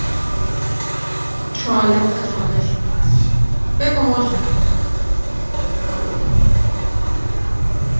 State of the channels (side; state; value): both; inverted; correlation -1.00